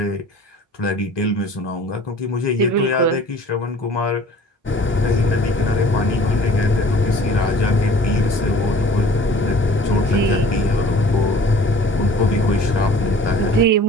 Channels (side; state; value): both; normal; correlation 0.48